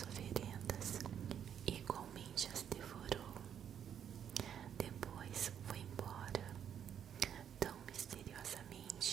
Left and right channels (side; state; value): left; quieter; 8.9 dB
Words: oferendas e igualmente as devorou. Depois foi embora, tão